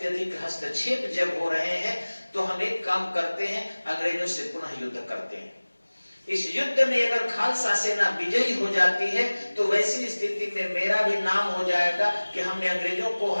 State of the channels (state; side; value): inverted; both; correlation -1.00